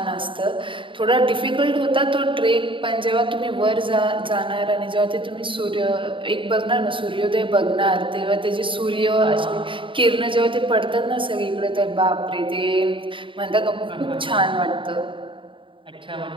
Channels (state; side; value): late; left; 0.25 ms